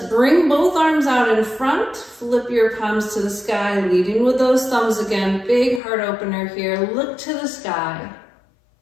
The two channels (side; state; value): right; drops out; at 5.8 s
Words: both arms out in front. Flip your palms to the sky, leading with those thumbs again. Big heart opener here. Look to the sky.